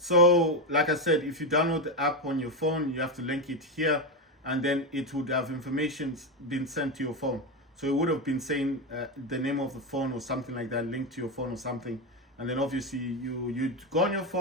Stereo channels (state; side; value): normal; both; correlation 0.11